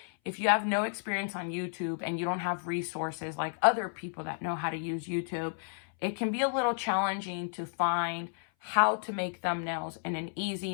If you have no experience on YouTube and you don't have resources like other people that know how to use YouTube, it can be a little challenging to find how to make thumbnails in an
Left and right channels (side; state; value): right; silent; 56 dB below the other